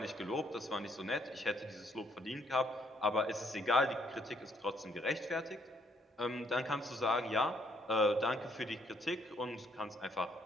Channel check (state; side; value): normal; both; correlation 0.69